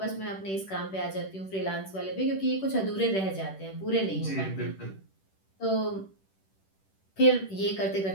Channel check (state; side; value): late; right; 10 ms